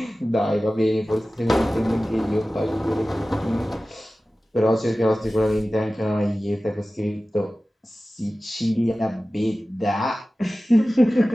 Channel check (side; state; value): both; normal; correlation 0.96